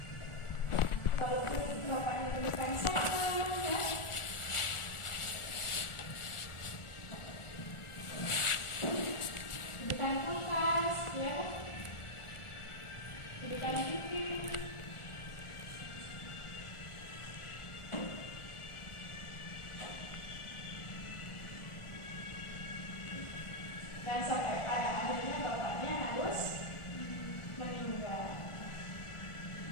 Walaupun bapaknya berikan sayang ya. Berikan kulkas ya. Berikan TV. Dan sampai pada akhirnya bapaknya harus meninggal.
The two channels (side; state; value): right; late; 1.4 ms